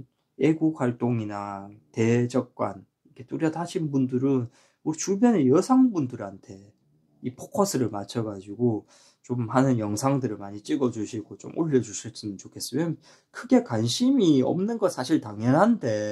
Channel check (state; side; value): identical; both; correlation 1.00